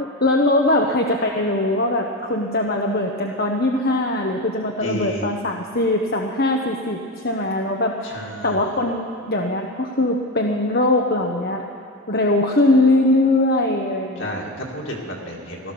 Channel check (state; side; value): normal; both; correlation 0.19